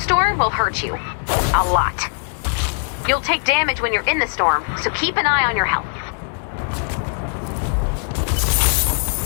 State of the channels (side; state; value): right; silent; 61 dB below the other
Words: will hurt you. A lot. You'll take damage when you're in the storm, so keep an eye on your health.